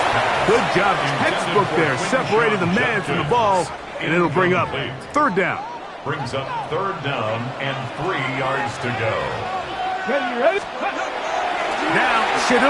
Good job, textbook there, separating the man from the ball, and it'll bring up 3rd down. Brings up 3rd down and 3 yards to go. Now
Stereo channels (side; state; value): both; identical; correlation 1.00